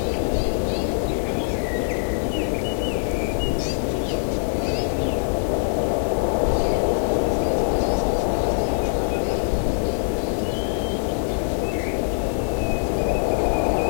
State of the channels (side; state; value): right; silent; digital silence